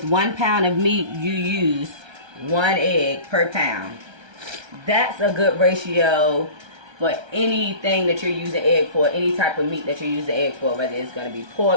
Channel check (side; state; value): left; late; 1.3 ms